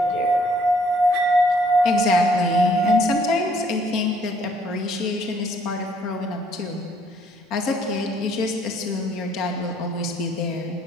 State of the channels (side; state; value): both; normal; correlation 0.64